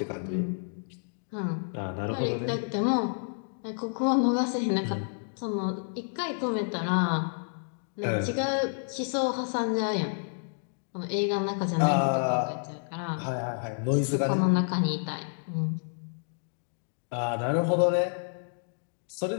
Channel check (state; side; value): silent; right; digital silence